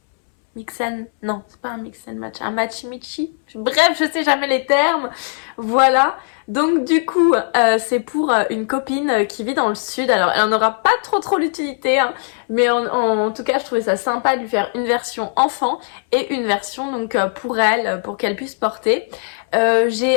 mix and... Non, c'est pas un mix and match, un match-michi. Bref, je sais jamais les termes. Voilà. Donc du coup, c'est pour une copine qui vit dans le sud. Alors, elle en aura pas trop l'utilité, hein, mais en tout cas, je trouvais ça sympa de lui faire une version enfant et une version donc pour elle, pour qu'elle puisse porter.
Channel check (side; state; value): right; silent; 67 dB below the other